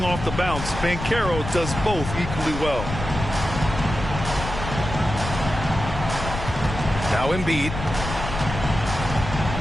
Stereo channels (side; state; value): left; noise; rumble, 7 dB below the sound